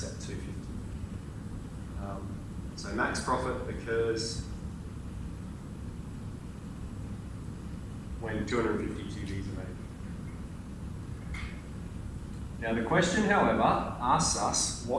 at 250. So max profit occurs when 250 TVs are made. Now the question, however, asks us,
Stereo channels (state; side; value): identical; both; correlation 1.00